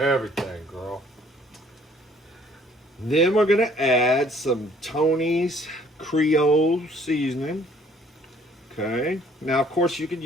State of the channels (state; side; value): normal; both; correlation 0.59